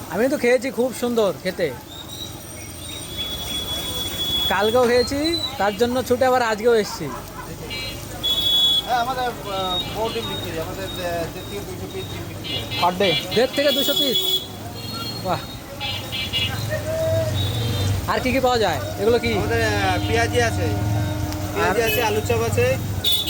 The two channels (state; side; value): identical; both; correlation 1.00